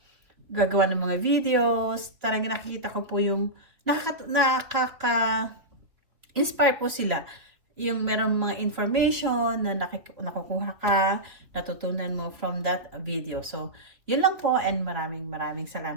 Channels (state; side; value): late; left; 2.8 ms